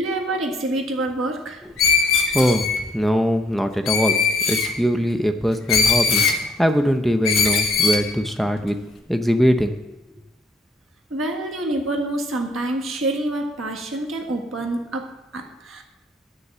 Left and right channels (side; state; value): both; normal; correlation 0.65